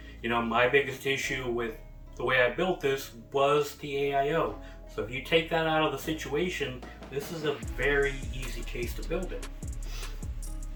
you know, my biggest issue with the way I built this was the AIO. So if you take that out of the situation, this is a very easy case to build in.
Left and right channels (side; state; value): both; identical; correlation 1.00